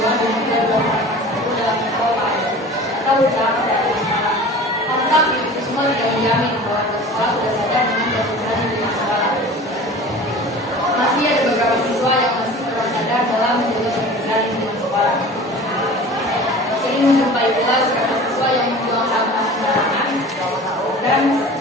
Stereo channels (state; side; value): normal; both; correlation 0.40